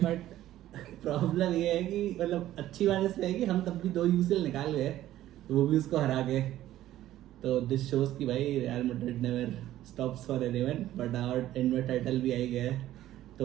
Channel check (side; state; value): left; quieter; 13.7 dB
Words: बट प्रॉब्लम ये है कि मतलब अच्छी बात इसमें है कि हम तब भी 2 यूसीएल निकाल गए, वो भी उसको हरा के। तो दिस शोज कि भाई real Madrid never stops for anyone, but our and में टाइटल भी आई गया है,